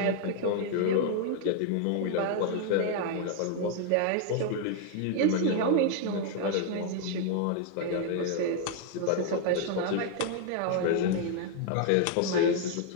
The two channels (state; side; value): different; both; correlation 0.00